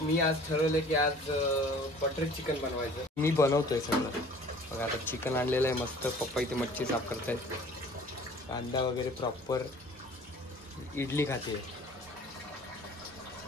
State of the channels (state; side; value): normal; both; correlation 0.49